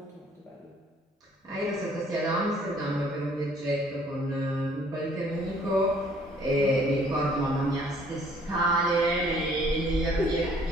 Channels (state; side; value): normal; both; correlation 0.60